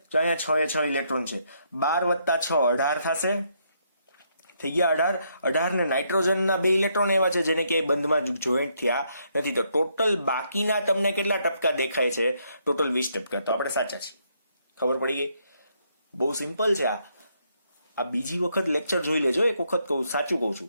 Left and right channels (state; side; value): inverted; both; correlation -0.74